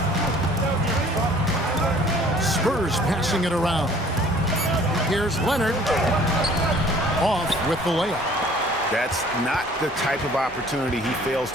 Spurs passing it around. Here's Leonard. Off with the layup. That's not the type of opportunity he fails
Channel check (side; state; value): both; normal; correlation 0.54